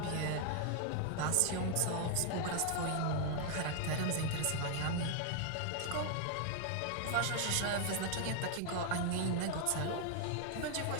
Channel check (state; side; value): different; both; correlation 0.00